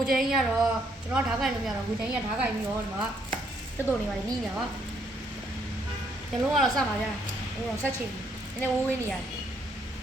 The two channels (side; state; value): both; normal; correlation 0.71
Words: ိုချင်းကြီးကတော့ကျွန်တော်ဓာတ်ကိုင်လို့မရတော့ကိုချင်းကြီးကဓာတ်ကိုင်ပြီးတော့ဒီမှာတက်တော်နေပါလေနီးနေတာပါညလုံးကတော့စမှာဗျာဟိုတော့ဆက်ချင်နည်းနည်းဝေးနေရတယ်